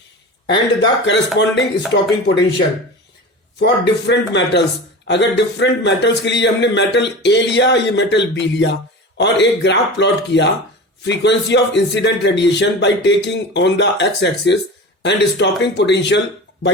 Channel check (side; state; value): both; normal; correlation 0.32